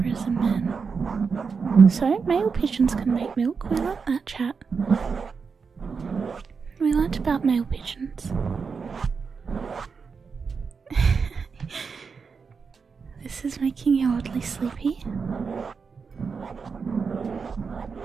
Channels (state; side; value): quieter; left; 5.4 dB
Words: is a man. So, male pigeons can make milk. We learnt that, chat. We learnt about male pigeons. This is making you oddly sleepy.